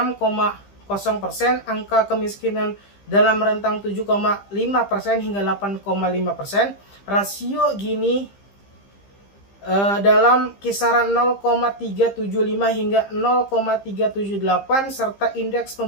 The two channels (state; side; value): late; right; 15 ms